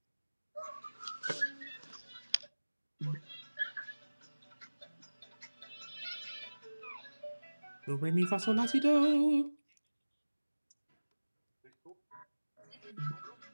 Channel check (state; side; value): inverted; both; correlation -1.00